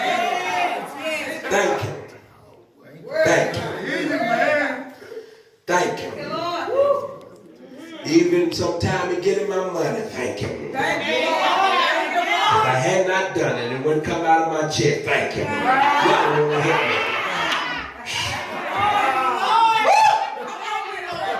Thank him. Thank him. Thank him. Even sometime in getting my money, thank him. If I had not done it, it wouldn't come out of my check. Thank him. Y'all will help me.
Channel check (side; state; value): both; identical; correlation 1.00